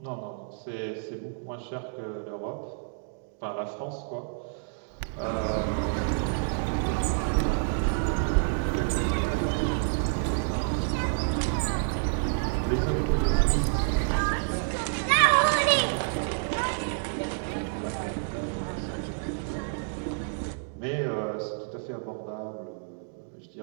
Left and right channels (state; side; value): silent; left; digital silence